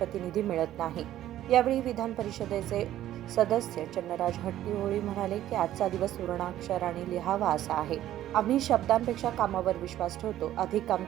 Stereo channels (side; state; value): left; quieter; 12.9 dB